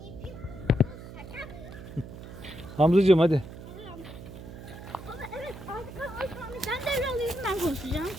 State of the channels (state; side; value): noise; right; hum, 13 dB below the sound